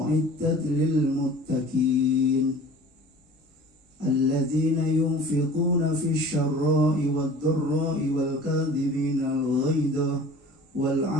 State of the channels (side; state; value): both; normal; correlation 0.43